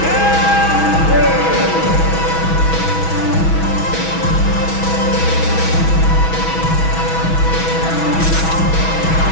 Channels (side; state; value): right; late; 6.2 ms